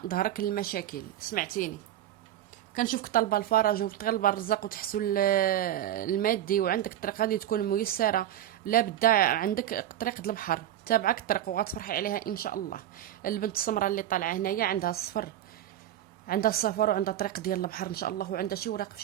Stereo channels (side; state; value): left; quieter; 12.0 dB